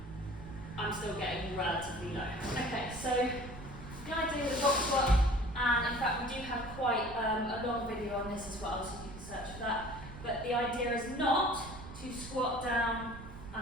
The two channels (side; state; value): right; noise; rumble, 13 dB below the sound